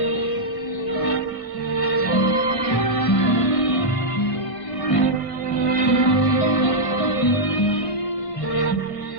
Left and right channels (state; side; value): late; right; 1.5 ms